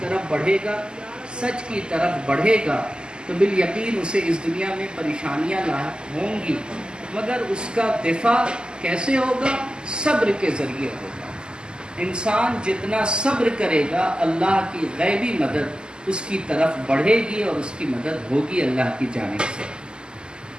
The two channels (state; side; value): late; left; 0.050 ms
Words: بڑھے گا، سچ کی طرف بڑھے گا، تو بالیقین اسے اس دنیا میں پریشانیاں لاحق ہوں گی، مگر اس کا دفاع کیسے ہوگا؟ صبر کے ذریعے ہوگا۔ انسان جتنا صبر کرے گا اللہ کی غیبی مدد اس کی طرف بڑھے گی اور اس کی مدد ہوگی اللہ کی جانب سے۔